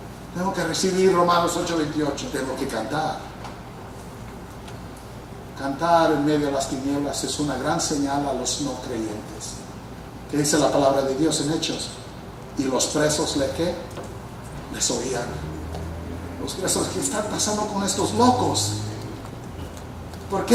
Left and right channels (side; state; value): both; identical; correlation 1.00